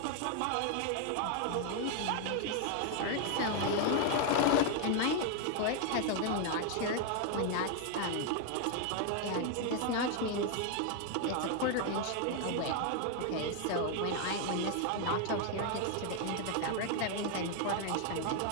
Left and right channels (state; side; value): different; both; correlation 0.00